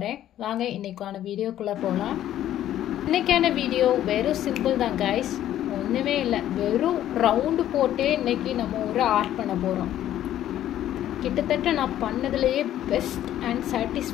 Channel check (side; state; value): right; quieter; 12.1 dB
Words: வாங்க இன்னைக்கான வீடியோக்குள்ள போலாம். இன்னைக்கான வீடியோ வெறும் சிம்பிள் தான் guys. ஒண்ணுமே இல்ல. வெறும் ரவுண்ட் போட்டே இன்னைக்கு நம்ம ஒரு ஆர்ட் பண்ண போறோம். கிட்டத்தட்ட நான் பண்ணதுலயே பெஸ்ட் அண்ட்